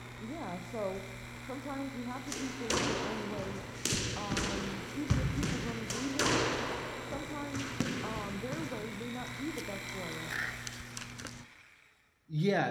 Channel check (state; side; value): identical; both; correlation 1.00